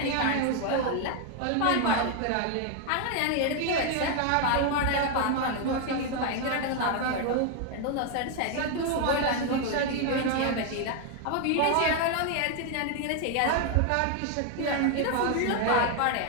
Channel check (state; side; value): different; both; correlation 0.01